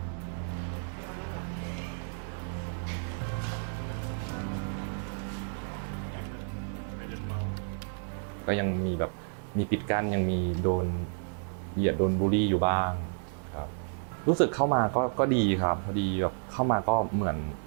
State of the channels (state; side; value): silent; left; digital silence